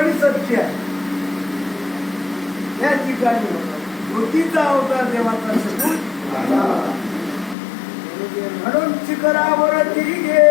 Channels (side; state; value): right; drops out; at 7.6 s